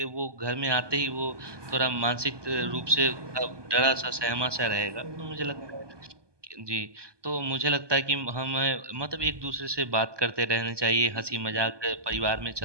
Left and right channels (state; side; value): late; left; 1.2 ms